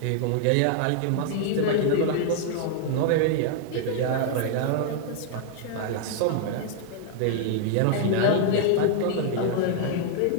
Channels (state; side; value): different; both; correlation 0.00